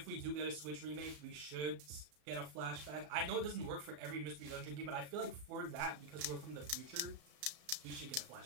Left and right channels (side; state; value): left; late; 34 ms